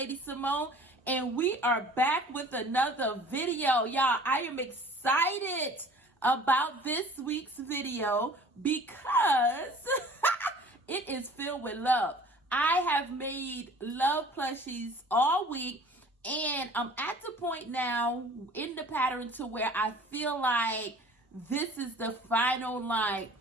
and we are back with another video. Y'all, I am excited about this week's video because it is filled with love. I have made love plushies all week, and I'm at the point now in the pattern to where I feel like this is the final,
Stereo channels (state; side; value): normal; both; correlation 0.48